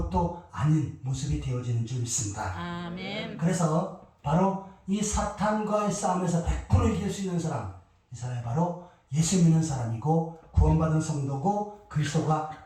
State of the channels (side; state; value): both; identical; correlation 1.00